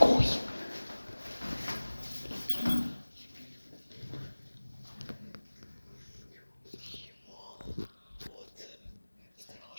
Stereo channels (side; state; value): both; inverted; correlation -1.00